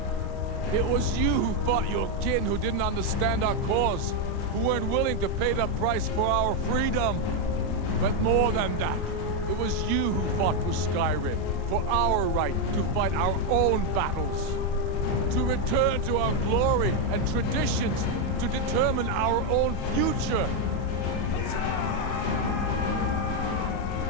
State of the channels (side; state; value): right; late; 34 ms